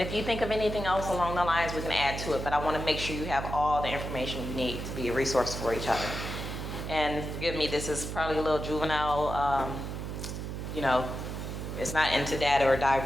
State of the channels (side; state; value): right; noise; hum, 6 dB below the sound